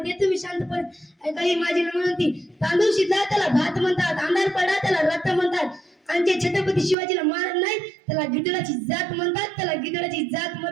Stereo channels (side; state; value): left; drops out; at 7.0 s